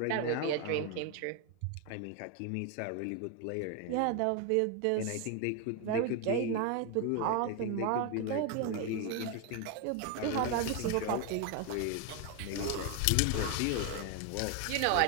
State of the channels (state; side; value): different; both; correlation 0.01